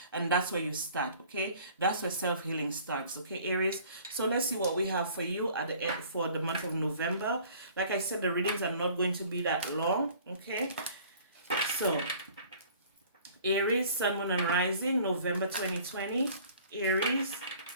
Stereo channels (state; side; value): inverted; both; correlation -0.51